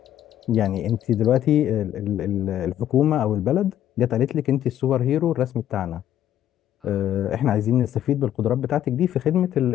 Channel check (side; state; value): right; quieter; 11.4 dB